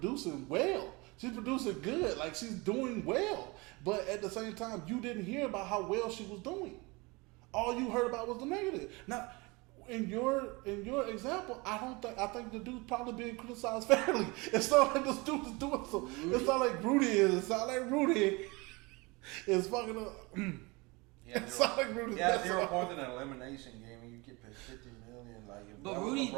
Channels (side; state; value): left; quieter; 25.6 dB